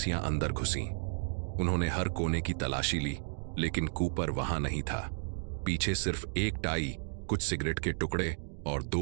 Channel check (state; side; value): silent; left; 56 dB below the other